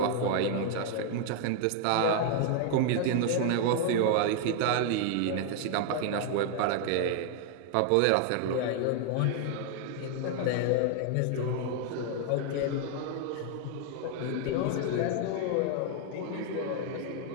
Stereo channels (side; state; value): both; different; correlation 0.00